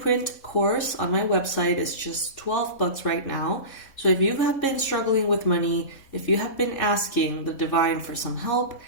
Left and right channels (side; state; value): right; late; 3.6 ms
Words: course on my website is just $12 right now. So if you have been struggling with money, if you have been asking the divine for some help,